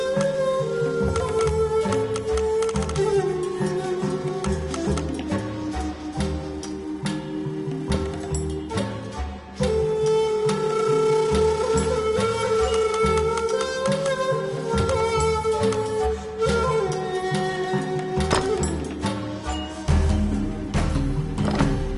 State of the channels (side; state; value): both; identical; correlation 1.00